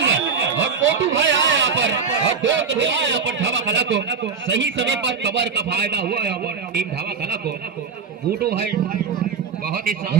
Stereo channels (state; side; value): quieter; left; 5.8 dB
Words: और मोटू भाई आया यहाँ पर, और 2 कदम आया यहाँ पर ढाबा कला को, सही समय पर कवर का फायदा हुआ है टीम ढाबा कला को। मोटू भाई बहुत ही